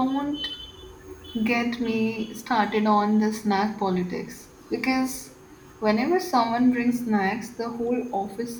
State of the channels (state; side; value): identical; both; correlation 1.00